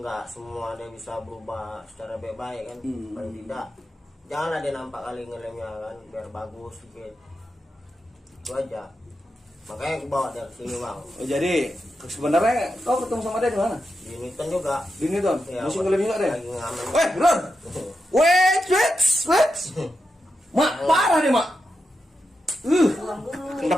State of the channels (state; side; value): normal; both; correlation 0.88